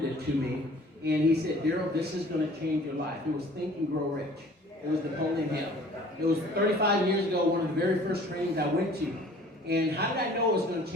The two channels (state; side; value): normal; both; correlation 0.50